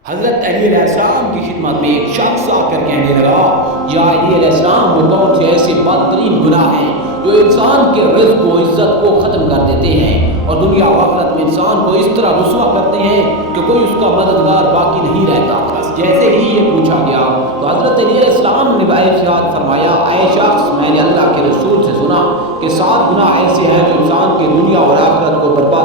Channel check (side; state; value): both; normal; correlation 0.10